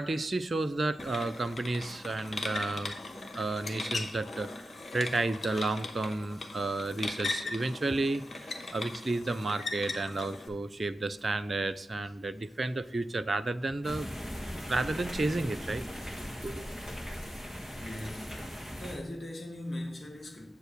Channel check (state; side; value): normal; both; correlation 0.91